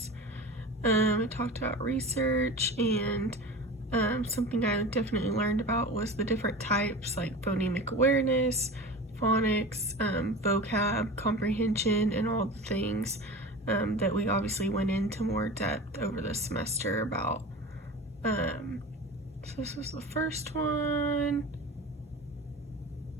It talked about research, and something I definitely learned about was the different types like phonemic awareness, phonics, vocab, comprehension, and all the things that we obviously went into more depth over the semester about. So this was the first one,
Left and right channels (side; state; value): both; normal; correlation 0.33